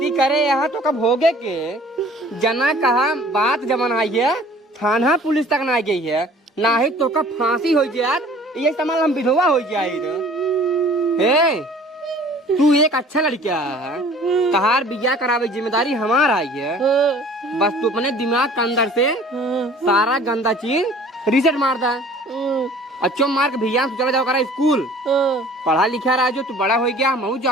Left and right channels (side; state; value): both; normal; correlation 0.50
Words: करे यहाँ तो कब होगे के जना कहा बात जमन आई है थाना पुलिस तक ना गई है ना ही तो का फांसी हो जाए ये सामान हम विधवा हो जाए तू एक अच्छा लड़का है कहार बिया करावे जिम्मेदारी हमारा आई है बस तू अपने दिमाग के अंदर से सारा गंदा चीज रिसेट मार दा अच्छो मार के भैया चला जाओ करा स्कूल पढ़ा लिखा रहा जो तू बड़ा हो गया मैं